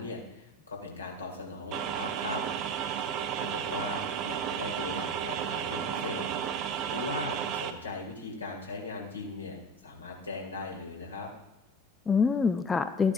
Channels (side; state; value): both; normal; correlation 0.34